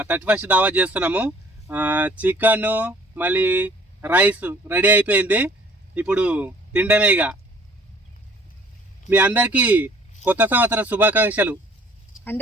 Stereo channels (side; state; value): both; normal; correlation 0.54